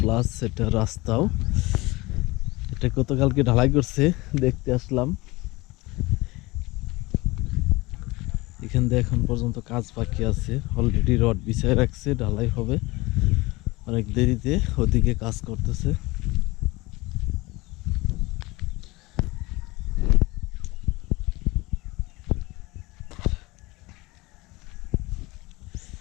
এটা রাস্তাও। এটা গতকালকে ঢালাই করছে, দেখতে আসলাম। এখান দিয়ে এখন পর্যন্ত কাজ বাকি আছে, অলরেডি রড বিছায় রাখছে, ঢালাই হবে অনেক দেরিতে। ওদিকে কাজ করতেছে।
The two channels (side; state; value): right; quieter; 22.1 dB